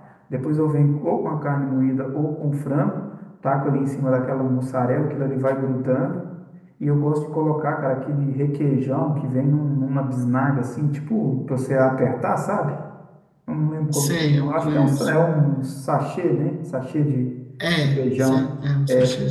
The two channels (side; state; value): both; identical; correlation 1.00